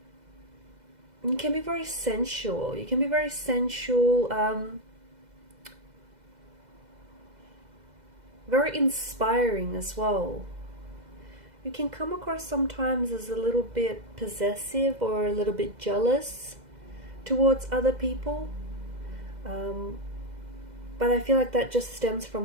you can be very sensual. You can be very sensual, very inspiring as well. You can come across sometimes as a little bit possessive or a little bit jealous towards other people. But I feel like that just stems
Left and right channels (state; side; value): late; left; 2.0 ms